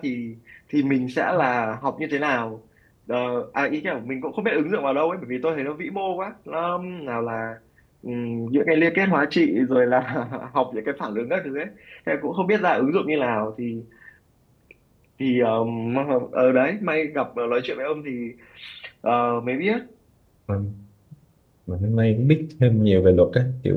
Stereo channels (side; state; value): both; identical; correlation 1.00